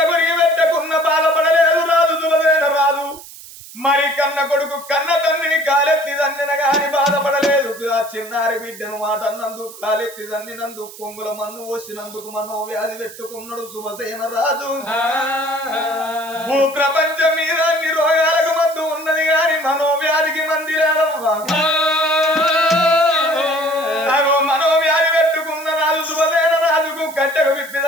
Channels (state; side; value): noise; right; hiss, 17 dB below the sound